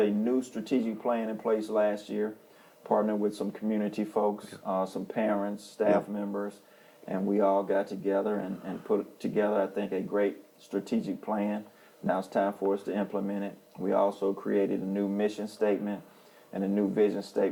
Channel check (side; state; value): both; identical; correlation 1.00